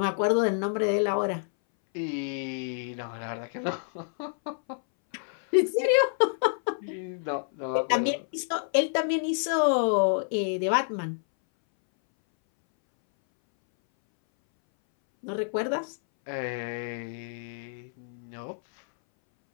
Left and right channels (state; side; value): silent; right; 59 dB below the other